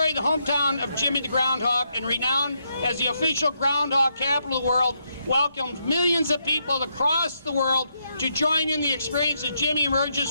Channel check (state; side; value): inverted; both; correlation -0.78